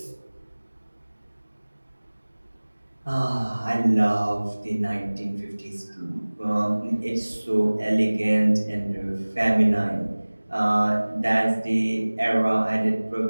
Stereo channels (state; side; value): inverted; both; correlation -1.00